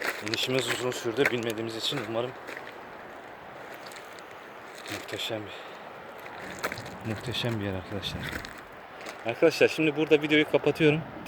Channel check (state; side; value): identical; both; correlation 1.00